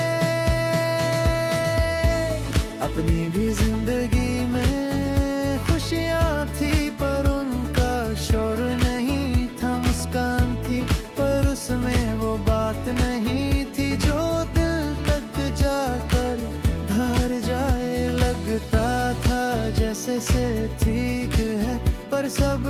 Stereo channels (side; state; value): both; identical; correlation 1.00